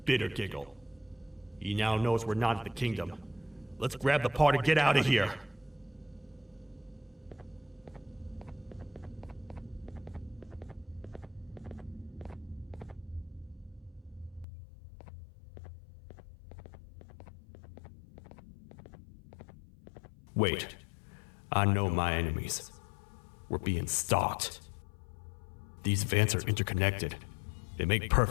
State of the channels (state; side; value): drops out; right; at 14.5 s